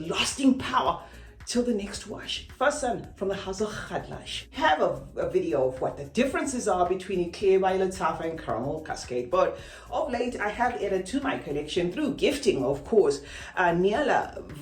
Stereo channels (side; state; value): both; identical; correlation 1.00